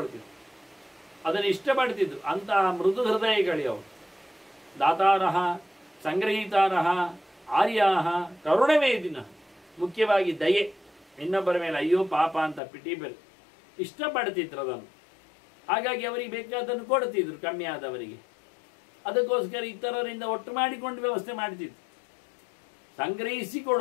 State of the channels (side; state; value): right; drops out; at 12.6 s